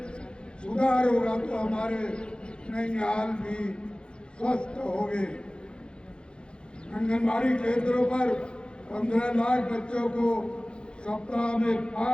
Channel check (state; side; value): late; right; 0.053 ms